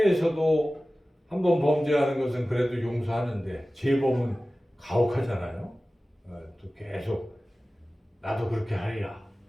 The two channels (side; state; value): both; normal; correlation 0.97